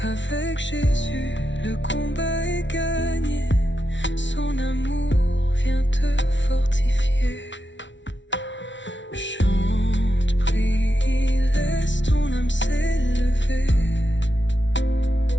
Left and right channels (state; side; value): late; right; 0.54 ms